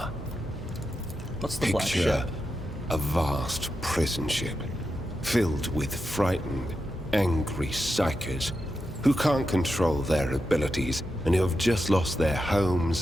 What's the Black Picture Ship? a vast prison ship filled with frightened, angry psychers who can't control their abilities and who have just lost their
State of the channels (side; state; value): both; normal; correlation 0.88